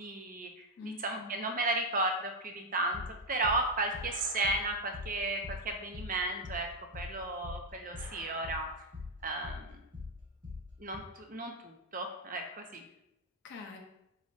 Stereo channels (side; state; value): both; normal; correlation 0.02